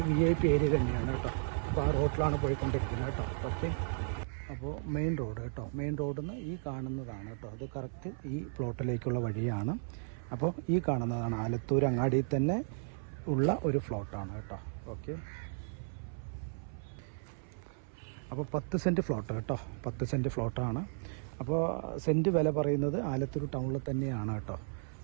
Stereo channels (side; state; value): left; silent; 55 dB below the other